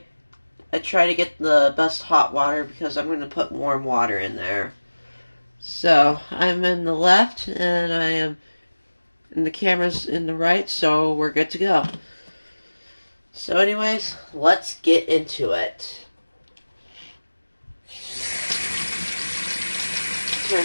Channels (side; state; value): both; inverted; correlation -1.00